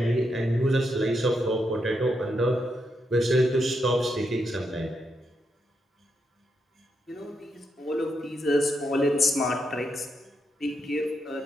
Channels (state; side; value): normal; both; correlation 0.81